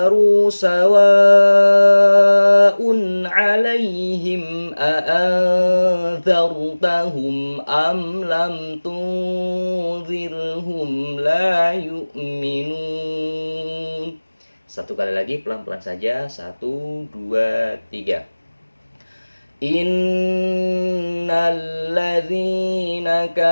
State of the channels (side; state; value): both; inverted; correlation -1.00